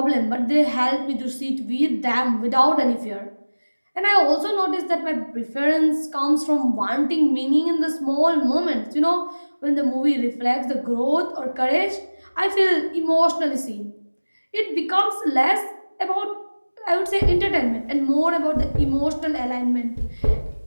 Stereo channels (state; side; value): inverted; both; correlation -1.00